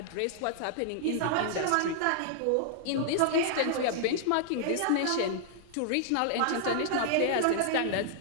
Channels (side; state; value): both; different; correlation -0.01